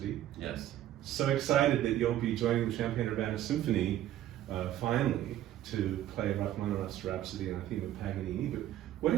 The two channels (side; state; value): left; quieter; 12.7 dB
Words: Yes. So excited that you'll be joining the Champaign-Urbana Symphony finally to play Rachmaninoff's Rhapsody on a theme of Paganini. But why